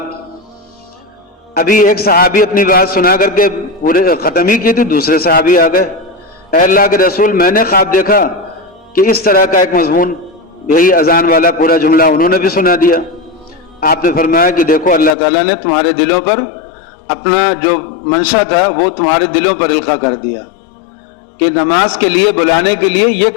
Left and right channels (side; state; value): right; drops out; at 15.2 s